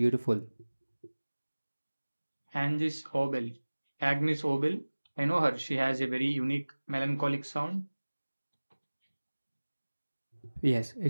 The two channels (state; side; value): inverted; both; correlation -1.00